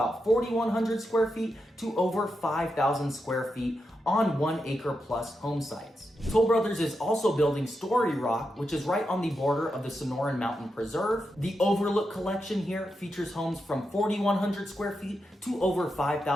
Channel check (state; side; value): normal; both; correlation 0.86